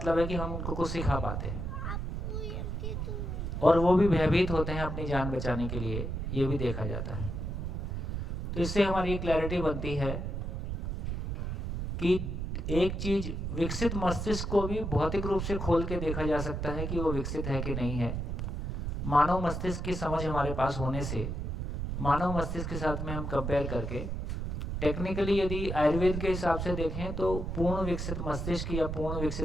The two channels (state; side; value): noise; right; rumble, 3 dB below the sound